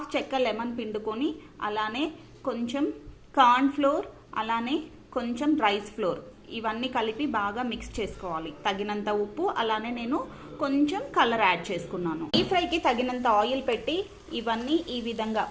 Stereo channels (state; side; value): identical; both; correlation 1.00